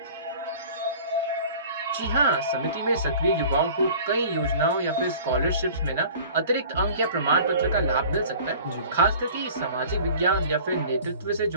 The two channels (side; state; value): both; inverted; correlation -0.45